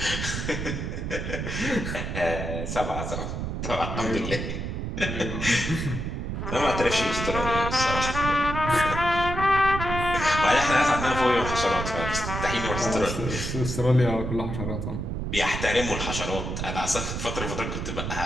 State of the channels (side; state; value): right; noise; rumble, 4 dB below the sound